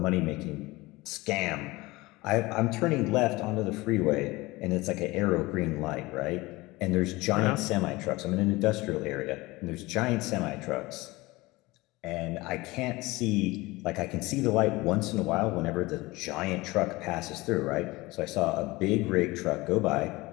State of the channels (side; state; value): right; quieter; 21.3 dB